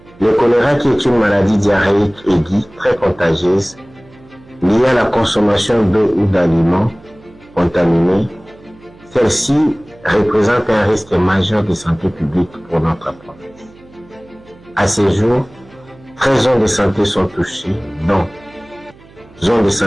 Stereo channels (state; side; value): noise; right; hum, 25 dB below the sound